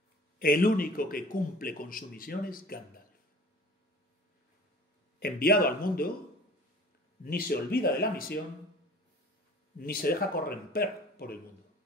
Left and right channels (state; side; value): normal; both; correlation 0.45